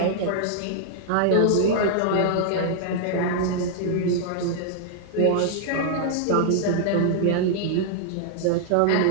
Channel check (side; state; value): both; different; correlation -0.01